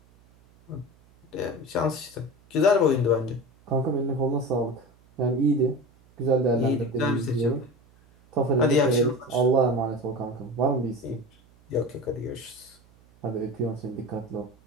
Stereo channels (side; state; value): right; noise; hum, 29 dB below the sound